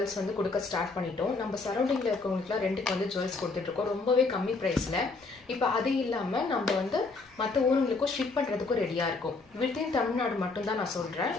வந்து கொடுக்க ஸ்டார்ட் பண்ணிட்டோம். நம்ம சரௌண்டிங்கில் இருக்கவங்களுக்குலாம் ரெண்டுக்கு வந்து ஜுவல்ஸ் கொடுத்துட்ருக்கோம் ரொம்பவே கம்மி ப்ரைஸில். இப்போ அது இல்லாமல் நம்ம வந்து மற்ற ஊருங்களுக்கும் ஷிப் பண்ணுறதுக்கும் ரெடியாக இருக்கும். வித்தின் தமிழ்நாடு மட்டும்தான் நான் சொல்கிறேன்,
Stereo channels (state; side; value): quieter; right; 3.8 dB